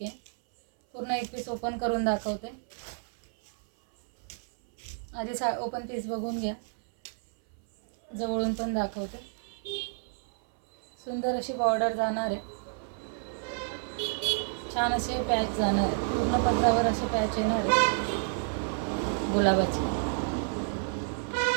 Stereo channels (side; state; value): left; silent; 58 dB below the other